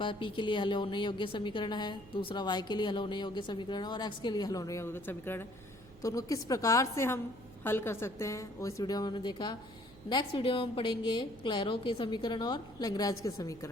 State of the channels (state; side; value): noise; right; hum, 22 dB below the sound